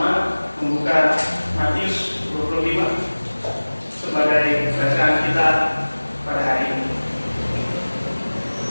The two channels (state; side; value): inverted; both; correlation -1.00